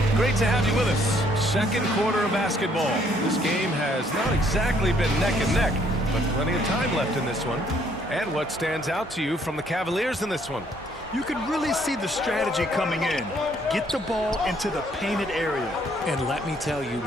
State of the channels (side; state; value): both; normal; correlation 0.66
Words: Great to have you with us. Second quarter of basketball. This game has not exactly been neck and neck, but plenty of time left in this one. And what stands out to you from the Cavaliers in this one? You can really see the strategy coming in. Get the ball into the painted area. And let me tell you,